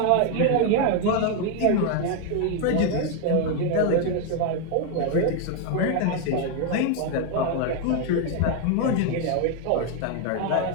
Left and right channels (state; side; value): different; both; correlation 0.01